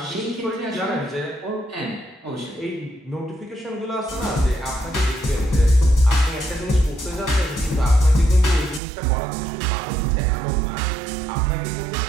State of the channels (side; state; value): left; drops out; at 8.8 s